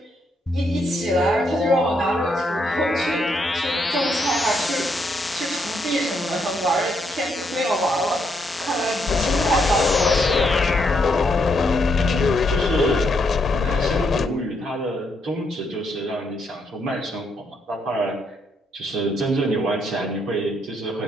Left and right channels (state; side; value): normal; both; correlation 0.76